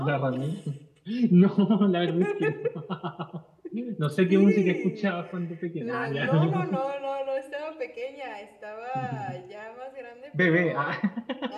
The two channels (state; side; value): identical; both; correlation 1.00